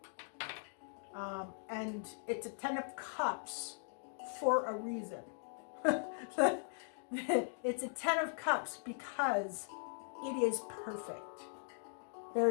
And it's a 10 of Cups for a reason. It's a 10 of Cups because it is perfect.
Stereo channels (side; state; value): right; silent; digital silence